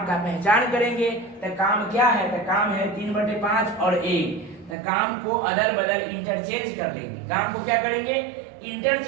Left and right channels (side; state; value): left; drops out; at 4.8 s